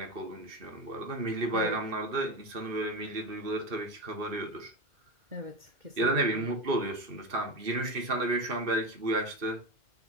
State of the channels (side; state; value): left; late; 2.6 ms